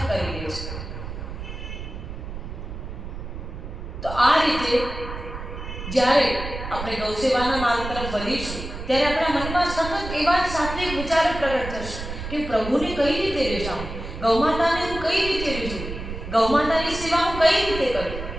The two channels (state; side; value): noise; right; rumble, 8 dB below the sound